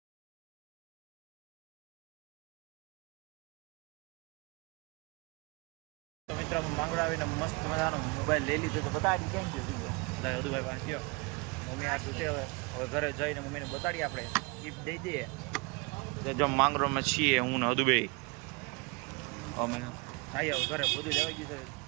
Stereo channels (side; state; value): left; quieter; 28.5 dB